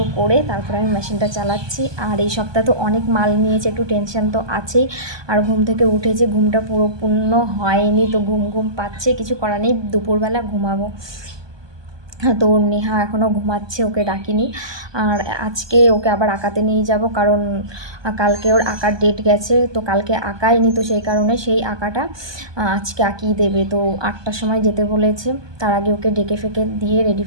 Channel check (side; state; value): left; late; 1.2 ms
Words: করে তারপরে আমি মেশিনটা চালাচ্ছি। আর এই সপ্তাহে তো অনেক মাল নিয়েছে, একটু টেনশন তো আছেই। আর ঘুম থেকে উঠেছে, ঘুমটা পুরো পূর্ণ হয়নি, তো ঘুম ঘুম পাচ্ছে, কিছু করার নেই, দুপুরবেলা ঘুমাবো। তো নেহা এখনও ঘুমাচ্ছে, ওকে ডাকিনি। আর আজকে ওকে আবার আঁকাতে নিয়ে যাব, কারণ কালকে ওর আঁকার ডেট গেছে, তো কালকে আঁকায়নি, তো সেই কারণে সেই আঁকাটা আজকে আঁকিয়ে দেবে। তো 8টার সময় যেতে বলেছে, তার আগে ওকে ডেকে ফেকে দিয়ে রেডি